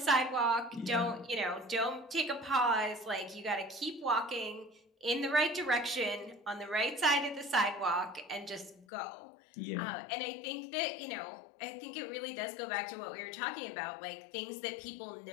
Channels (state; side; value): drops out; right; at 8.8 s